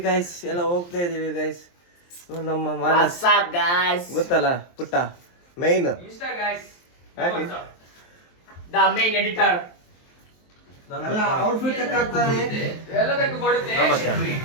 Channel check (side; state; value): right; late; 23 ms